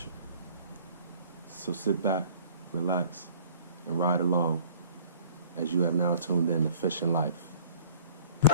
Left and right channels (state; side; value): inverted; both; correlation -0.51